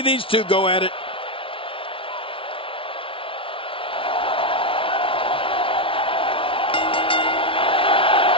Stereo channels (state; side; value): late; right; 0.25 ms